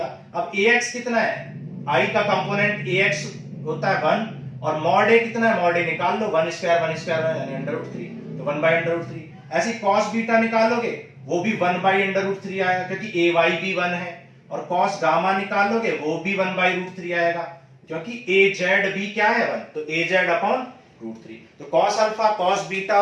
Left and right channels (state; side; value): identical; both; correlation 1.00